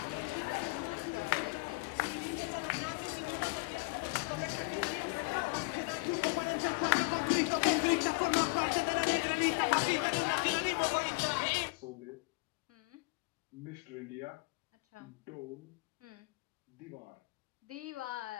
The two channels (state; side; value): quieter; right; 28.1 dB